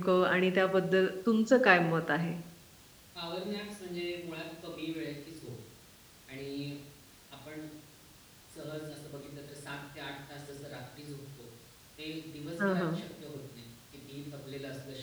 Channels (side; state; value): both; identical; correlation 1.00